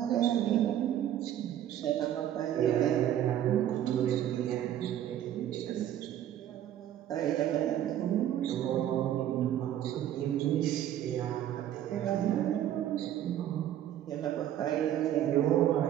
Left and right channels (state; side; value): quieter; left; 11.4 dB